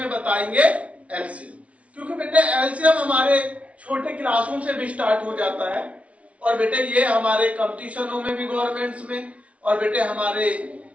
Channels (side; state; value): left; late; 0.064 ms